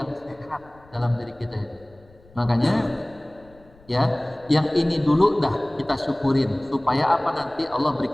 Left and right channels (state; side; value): noise; left; rumble, 27 dB below the sound